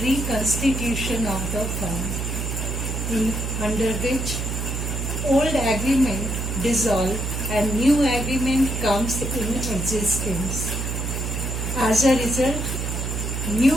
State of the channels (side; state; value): right; noise; hum, 2 dB below the sound